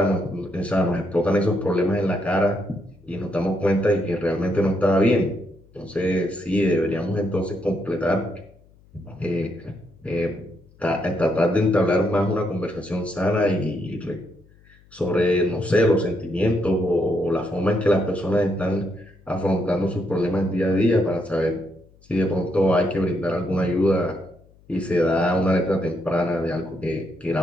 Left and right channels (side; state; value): left; noise; hum, 28 dB below the sound